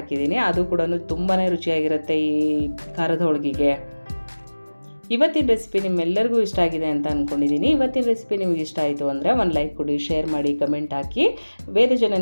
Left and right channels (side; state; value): both; inverted; correlation -1.00